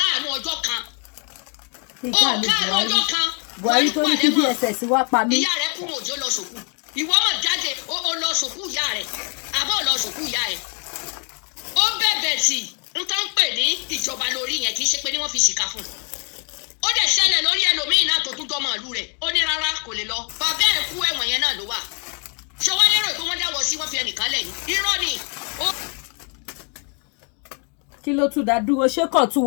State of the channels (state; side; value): quieter; right; 38.4 dB